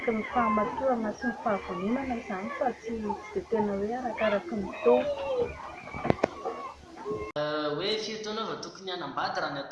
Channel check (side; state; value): both; identical; correlation 1.00